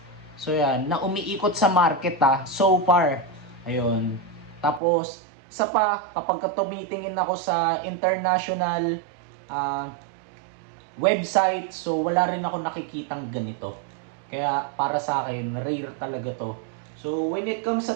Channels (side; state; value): left; drops out; at 4.8 s